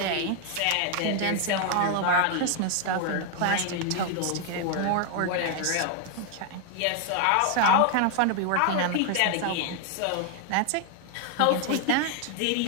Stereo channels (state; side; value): different; both; correlation 0.01